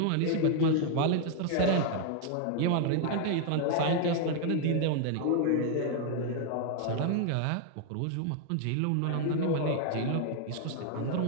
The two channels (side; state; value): both; different; correlation 0.00